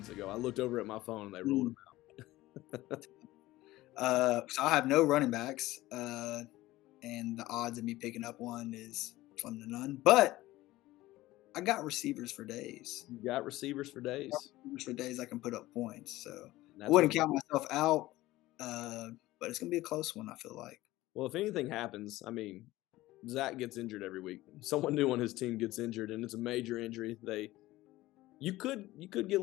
ago. I looked over at my phone and they ruled him out. So I have no running backs, and the odds of me picking up one is slim to none. But I got receivers for days. You got receivers for days? Receivers for days I can put up points. So I wouldn't count myself out, but it's going to be a close one, I feel like. Well, if anything happens, I mean, Zach gets injured every week. Someone new on his team gets injured, and it's a major injury. You could get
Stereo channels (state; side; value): quieter; right; 17.4 dB